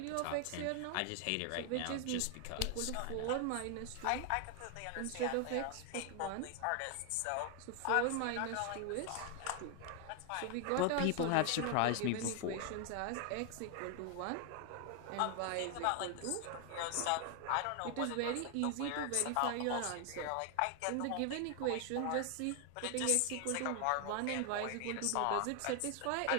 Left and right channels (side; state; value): both; different; correlation 0.00